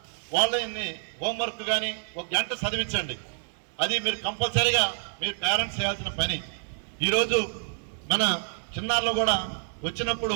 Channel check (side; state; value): left; silent; digital silence